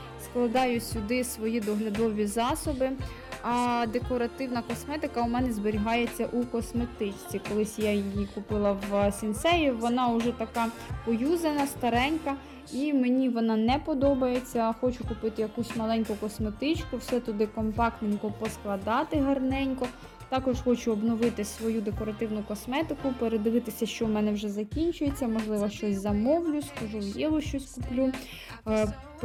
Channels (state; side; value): identical; both; correlation 1.00